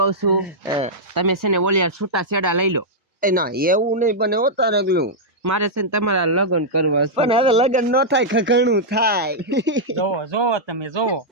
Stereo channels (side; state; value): both; normal; correlation -0.07